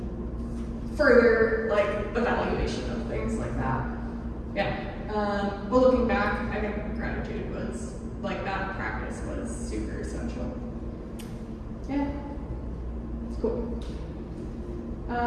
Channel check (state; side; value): identical; both; correlation 1.00